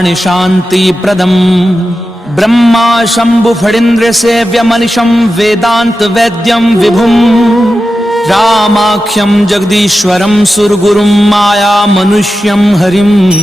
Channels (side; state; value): both; normal; correlation 0.92